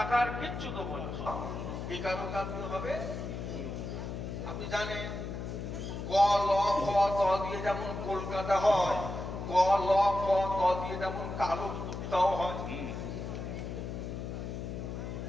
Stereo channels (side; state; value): left; noise; hum, 6 dB below the sound